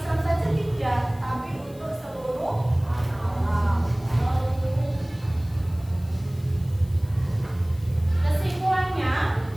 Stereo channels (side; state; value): left; noise; hiss, 25 dB below the sound